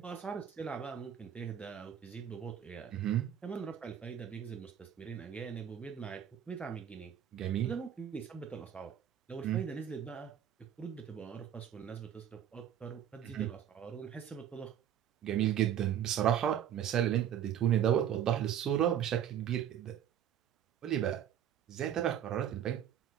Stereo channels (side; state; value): left; quieter; 9.8 dB